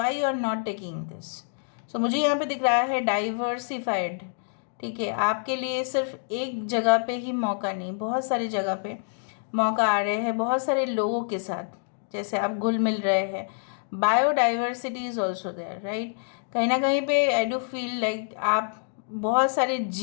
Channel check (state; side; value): silent; right; digital silence